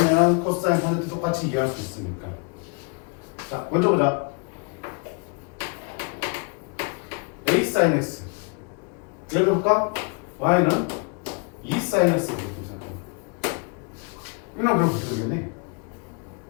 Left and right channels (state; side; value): quieter; right; 34.9 dB